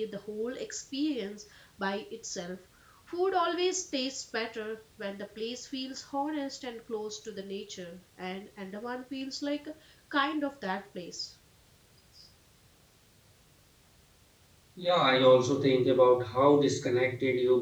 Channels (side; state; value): both; identical; correlation 1.00